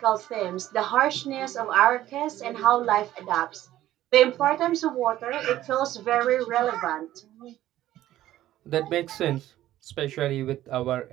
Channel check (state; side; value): quieter; left; 13.9 dB